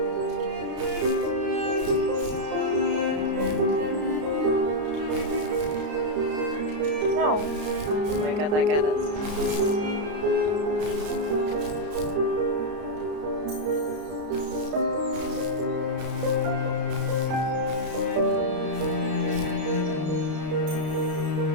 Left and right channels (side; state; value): left; late; 33 ms